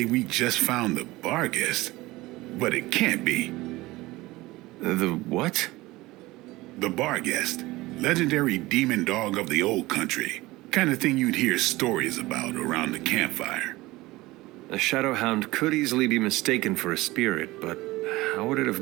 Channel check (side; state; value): left; quieter; 19.7 dB